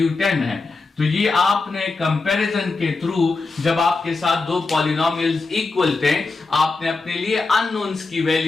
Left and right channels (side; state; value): right; quieter; 3.9 dB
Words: 10 है। तो ये आपने कंपैरिजन के थ्रू, जब आपके साथ दो पॉलिनोमियल्स इक्वल थे, आपने अपने लिए अननोन्स की